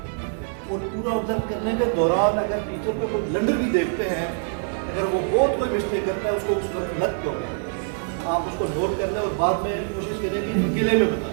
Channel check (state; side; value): silent; left; 62 dB below the other